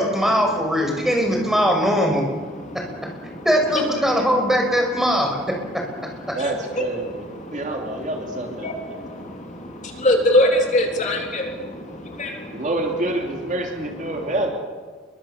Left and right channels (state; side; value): normal; both; correlation 0.53